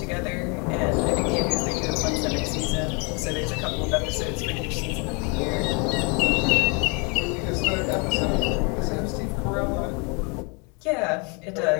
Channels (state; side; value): quieter; right; 32.5 dB